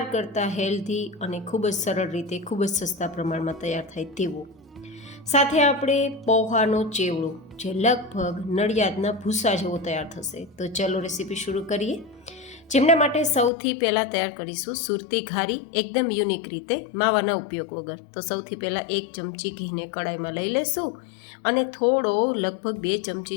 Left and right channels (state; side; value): drops out; right; at 13.5 s